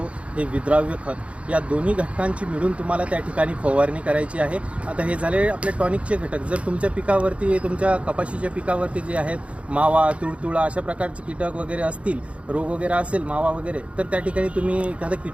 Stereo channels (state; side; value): late; left; 0.062 ms